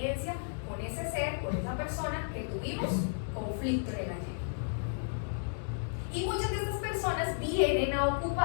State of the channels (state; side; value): silent; right; digital silence